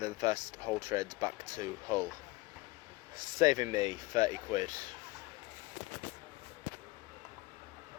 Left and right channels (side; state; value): right; quieter; 21.4 dB